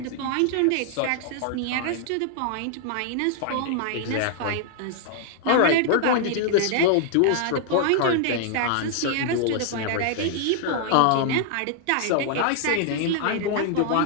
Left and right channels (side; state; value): both; different; correlation -0.01